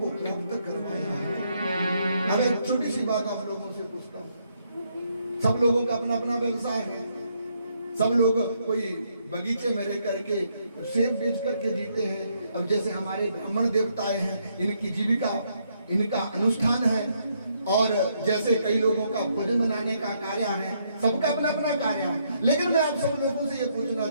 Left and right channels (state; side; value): inverted; both; correlation -0.74